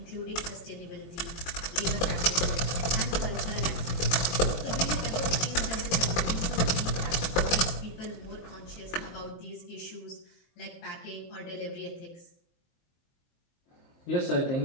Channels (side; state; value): right; late; 22 ms